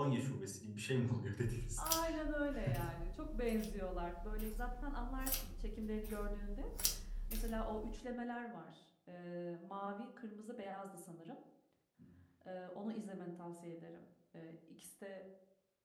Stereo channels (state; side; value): identical; both; correlation 1.00